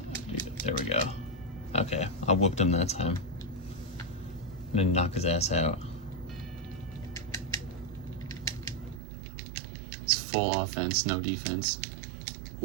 There we go. Okay, I whooped him that time. I'm gonna knock his ass out. It's full offense, no defense.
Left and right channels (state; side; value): drops out; left; at 9.0 s